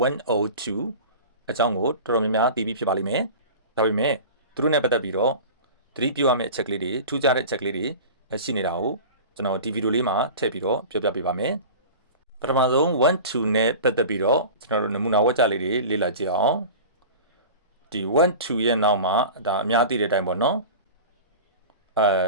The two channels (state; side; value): inverted; both; correlation -0.35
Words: 102အကြောင်းကိုတော်တော်များများသိပြီးဖြစ်ပါလိမ့်မယ်ဒါပေမဲ့သူတို့နဲ့ပတ်သက်ပြီးတော့သတိပြုရမယ့်အချက်လေးတွေထူးခြားတဲ့အချက်လေးတွေရှိနေတာကိုကျွန်တော်ဒီဗီဒီယိုလေးမှာထည့်ပြီးတော့ပြောပြပေးပါမယ်ပထမဆုံး12နဲ့ပတ်သက်ပြီးတော့ကျွန်တော်တို့နမူနာဝက်ကြလေးတွေလေ့လာကြည့်အောင်ဒီ1-2ရဲ့နောက်မှာဒါအများသိတဲ့အတိုင်းပေါ့နော်